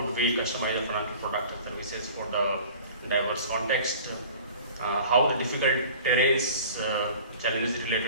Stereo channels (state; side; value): inverted; both; correlation -0.43